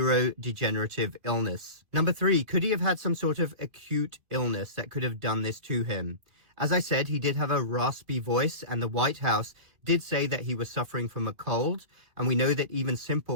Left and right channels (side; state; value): left; late; 2.6 ms